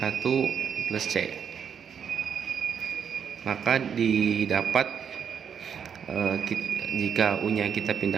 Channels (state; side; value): quieter; left; 7.5 dB